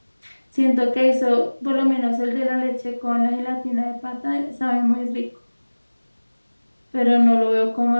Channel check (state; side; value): inverted; both; correlation -1.00